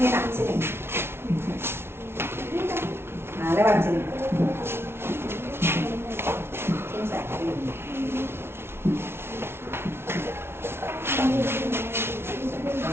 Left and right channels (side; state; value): left; late; 0.12 ms